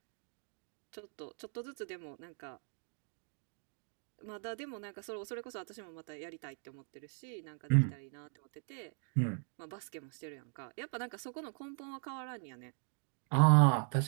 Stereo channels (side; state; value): left; silent; 52 dB below the other